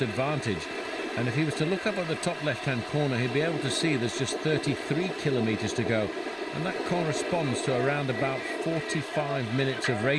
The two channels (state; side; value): identical; both; correlation 1.00